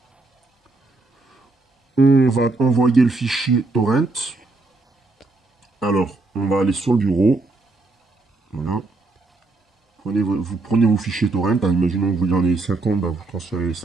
On va envoyer le fichier torrent. Alors, on va aller sur le bureau. Voilà. Vous prenez vos fichiers torrent. Hein, imaginons que vous en avez 50, bah, vous transférez les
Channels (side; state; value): left; quieter; 3.4 dB